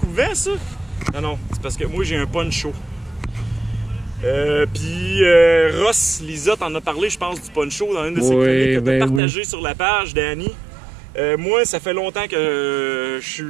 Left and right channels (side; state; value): left; drops out; at 9.2 s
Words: de vent, ça? Non, non, c'est parce que moi, j'ai un poncho. Puis Ross, Lisa, t'en as parlé, je pense, du poncho dans une de ses chroniques que t'as partagé sur la page, Danny. Moi, ça fait longtemps que